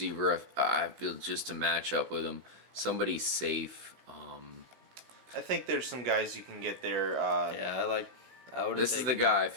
I feel just to match up with him, somebody safe. I think there's some guys you can get there. Yeah, I would. This is the guy I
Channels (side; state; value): left; late; 16 ms